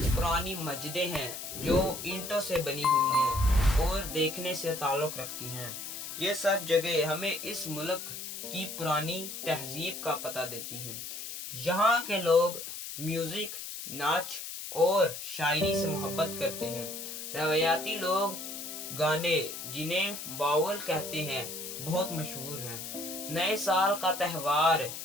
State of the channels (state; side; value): noise; left; hiss, 8 dB below the sound